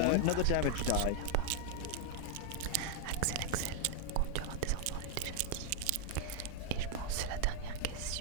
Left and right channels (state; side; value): different; both; correlation 0.00